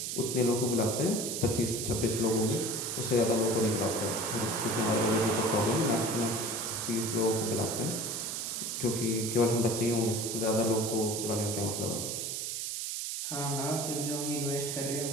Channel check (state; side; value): noise; right; hiss, 3 dB below the sound